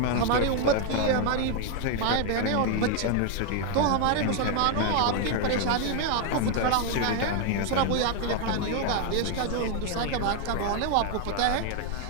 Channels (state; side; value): different; both; correlation 0.01